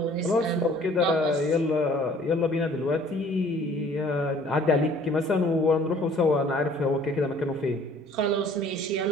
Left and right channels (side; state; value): both; normal; correlation 0.54